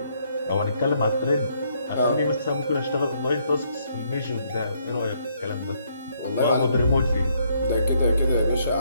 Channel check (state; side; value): inverted; both; correlation -0.70